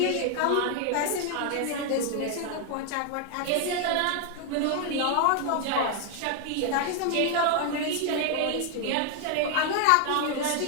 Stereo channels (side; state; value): both; different; correlation 0.00